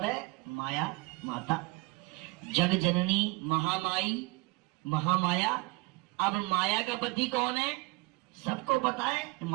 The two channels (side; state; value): left; quieter; 25.1 dB